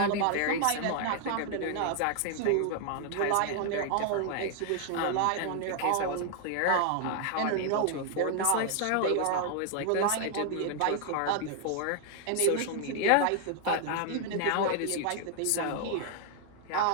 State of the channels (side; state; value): both; different; correlation 0.00